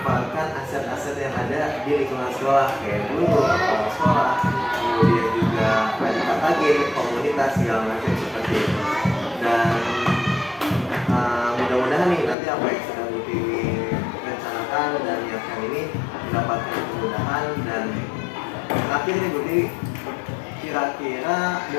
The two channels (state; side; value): drops out; right; at 12.4 s